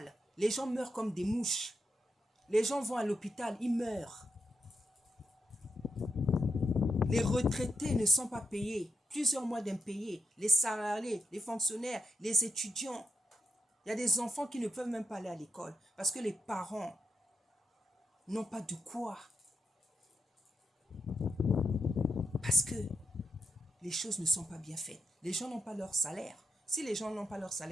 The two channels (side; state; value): both; normal; correlation 0.84